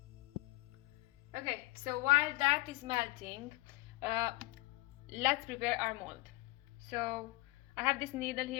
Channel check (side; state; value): right; quieter; 21.4 dB